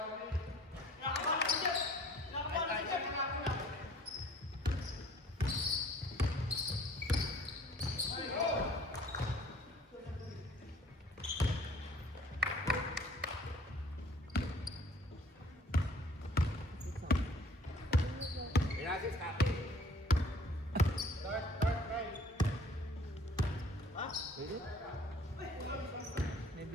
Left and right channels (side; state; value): both; normal; correlation 0.54